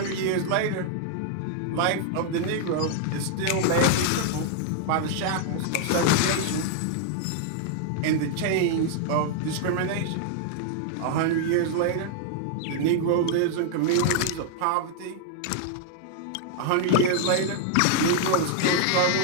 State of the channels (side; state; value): both; different; correlation -0.01